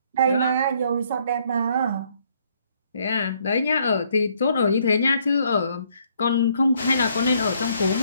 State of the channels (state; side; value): inverted; both; correlation -0.67